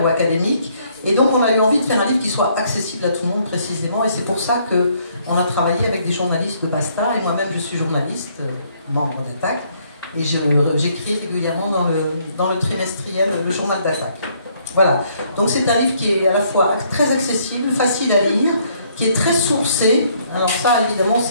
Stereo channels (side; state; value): both; inverted; correlation -0.67